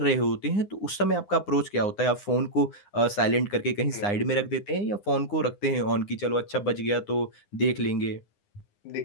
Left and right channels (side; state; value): right; late; 9.7 ms